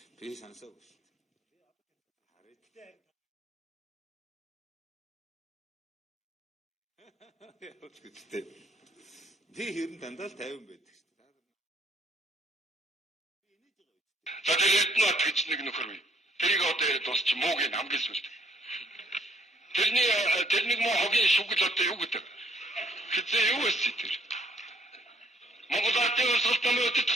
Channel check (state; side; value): normal; both; correlation 0.65